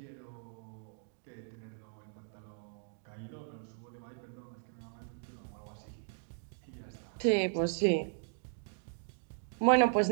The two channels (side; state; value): left; silent; digital silence